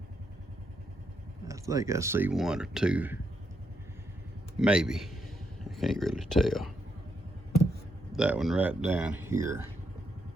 I think I see one or two, maybe. I can't really tell. That one right down here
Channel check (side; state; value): both; normal; correlation 0.79